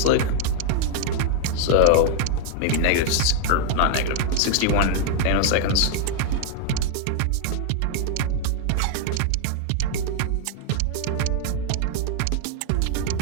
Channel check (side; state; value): both; different; correlation 0.00